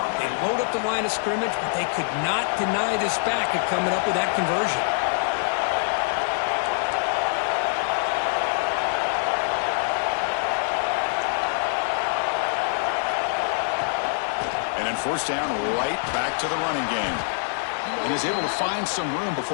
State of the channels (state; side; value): silent; right; digital silence